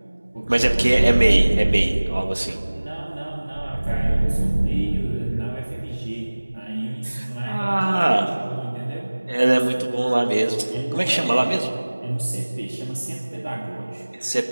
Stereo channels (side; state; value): both; inverted; correlation -1.00